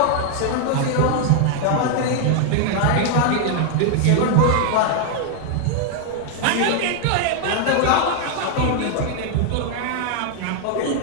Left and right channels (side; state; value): both; different; correlation 0.00